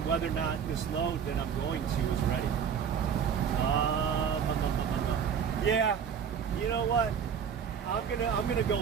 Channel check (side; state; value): left; quieter; 7.5 dB